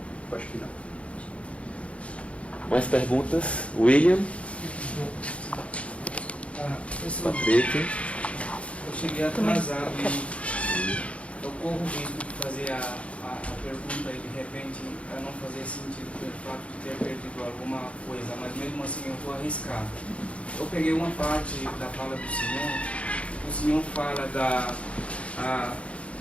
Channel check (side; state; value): right; late; 0.062 ms